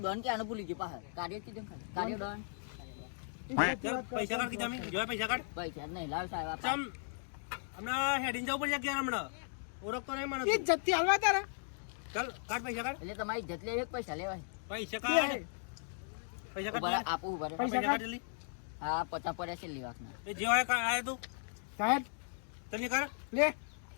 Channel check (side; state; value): right; silent; digital silence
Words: કે આનું ભૂલી ગયો પાછળ. કાર્ય કીધું ખાલી. કાર્ય ડોન ચાલ પૈસા કાઢ કીધા મેં જો પૈસા કાઢ પૈસા જ નહીં લાવ સાહેબ આપા. ચમ હમણાં હેડિંગ જવું પડશે ક્યાં હમણાં ઓળખતો નહીં મને ઈ જતી હાલવા તારા. ચાલ કાઢ પૈસા કાઢ એટલે તમારી ઇજ્જત લેવી કે પૈસા લેવાય. પૈસા કાઢ પૈસા ઉભા રહો, કાઢ આપું ઉભા રહો. પૈસા કાઢ જલ્દી હા 50 પડ્યા છે લેવાના. એ જે હોય આય તું સાહેબ જલ્દી કર લે.